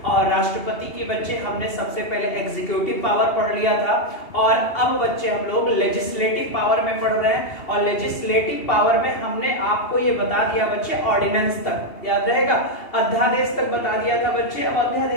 और राष्ट्रपति की बच्चे हमने सबसे पहले एग्जीक्यूटिव पावर पढ़ लिया था और अब बच्चे हम लोग लेजिस्लेटिव पावर में पढ़ रहे हैं। और लेजिस्लेटिव पावर में हमने आपको ये बता दिया बच्चे ऑर्डिनेंस तक, याद रहेगा, अध्यादेश तक बता दिया था बच्चे। अब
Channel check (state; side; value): late; right; 2.8 ms